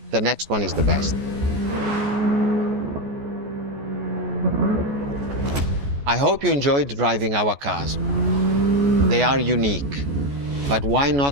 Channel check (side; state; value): left; late; 14 ms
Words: the next one is the best. I hope you enjoyed driving our cars. They are unique, but why